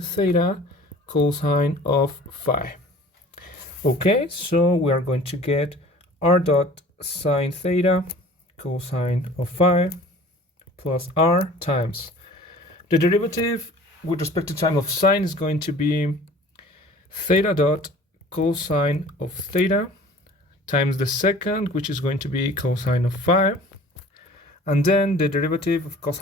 theta cosine of phi. Okay, so we are going to get r dot sine theta cosine of phi plus r times the derivative with respect to time of sine is going to be theta dot cosine of theta times the second, which is going to be cosine of phi, and then the derivative of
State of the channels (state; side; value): normal; both; correlation 0.46